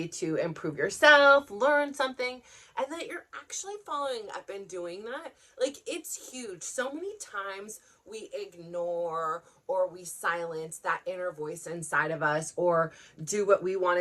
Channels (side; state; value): both; identical; correlation 1.00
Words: to improve yourself, learn something, and that you're actually following up and doing that. It's huge. So many times we ignore or we silence that inner voice inside of us, or do what we want